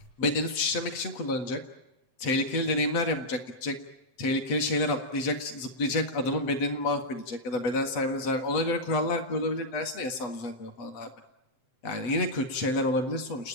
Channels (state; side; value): late; right; 7.9 ms